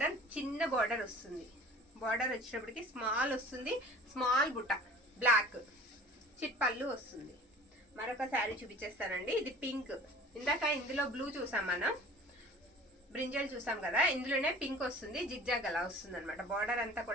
చిన్న బార్డర్ వస్తుంది. బార్డర్ వచ్చేటప్పటికి స్మాల్ వస్తుంది. స్మాల్ బుట్ట, బ్లాక్, చిట్ పళ్ళు వస్తుంది. మరొక శారీ చూపించేస్తానండి. ఇది పింక్. ఇందాక ఇందులో బ్లూ చూసాం మనం, బ్రింజల్ చూసాం కదా, ఇందులోనే పింక్ వస్తుంది. జిగ్జాగ్ అలా వస్తుంది అనమాట. బార్డర్ అంతా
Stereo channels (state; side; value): normal; both; correlation 0.44